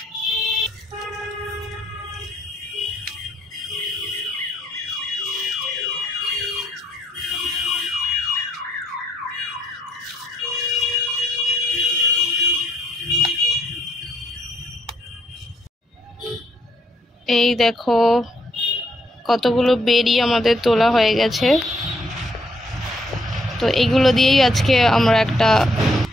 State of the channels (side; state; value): both; normal; correlation 0.72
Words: এই দেখো কতগুলো বেরি আমাদের তোলা হয়ে গেছে। তো এইগুলো দিয়েই আজকে আমরা একটা